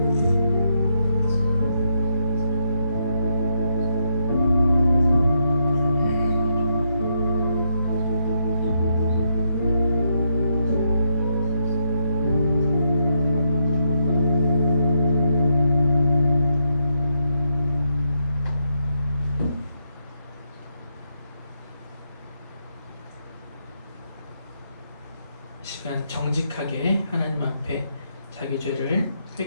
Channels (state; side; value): inverted; both; correlation -0.79